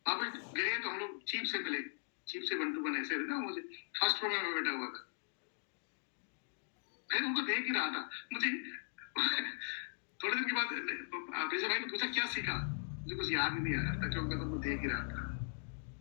वहां पे गए तो हम लोग चीफ से मिले, चीफ से 1 to 1 ऐसे ना, मुझे फर्स्ट रो में बैठा हुआ था, मैं उनको देख ही रहा था। मुझे थोड़े दिन के बाद बेजा भाई ने पूछा क्या सीखा, मुझे कुछ याद ही नहीं आ रहा था क्योंकि मैं तुमको देख ही रहा था।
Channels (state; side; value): silent; right; digital silence